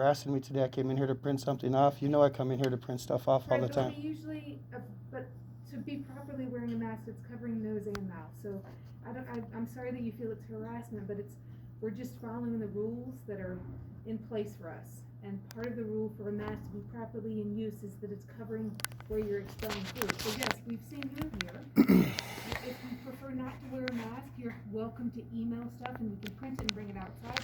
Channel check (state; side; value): identical; both; correlation 1.00